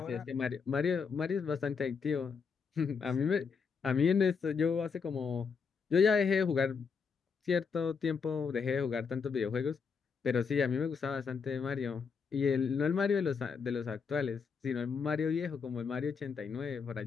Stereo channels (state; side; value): quieter; right; 5.7 dB